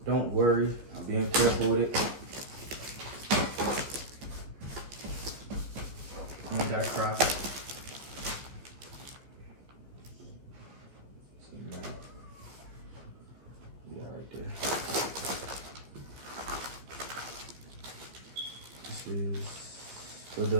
don't worry. I'm being careful with it. You ain't gotta cry. So, man, yeah, right there. This is for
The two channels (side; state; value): left; late; 15 ms